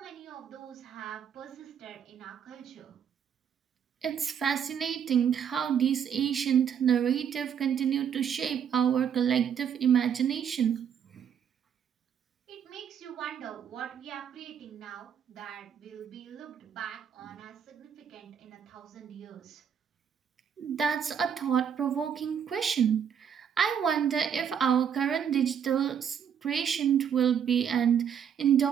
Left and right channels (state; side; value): quieter; left; 8.1 dB